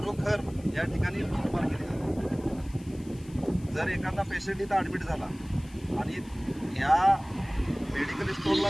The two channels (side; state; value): left; noise; hiss, 24 dB below the sound